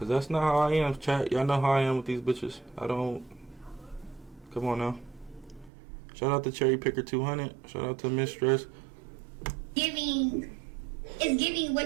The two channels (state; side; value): drops out; left; at 5.7 s